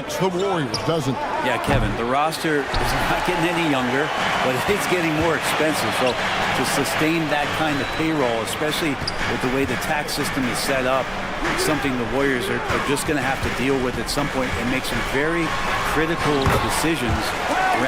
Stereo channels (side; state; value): both; identical; correlation 1.00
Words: the Warriors, doesn't it? Yeah, Kevin, the roster is not getting any younger, but it's getting more expensive. So to sustain that kind of payroll, especially with the way the tax system is set up, it's something the Warriors are just going to have to deal with at some point and make some very critical decisions